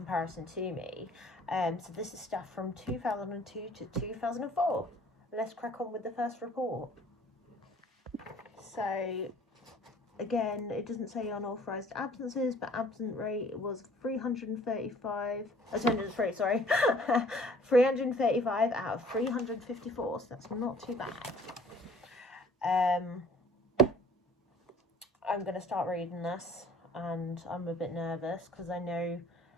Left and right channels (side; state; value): both; normal; correlation 0.53